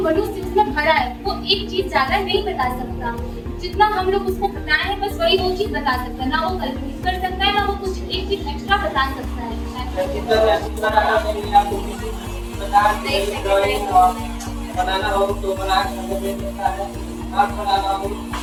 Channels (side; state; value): both; identical; correlation 1.00